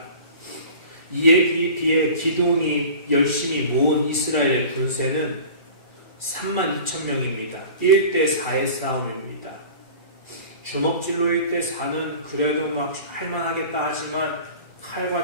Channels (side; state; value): both; inverted; correlation -0.41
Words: 이에 비해 기드온이 열심히 모은 이스라엘의 군세는 3만 2천 명입니다. 1대4의 싸움입니다. 주먹질로 1대4는 그래도 막 할만하겠다 하지만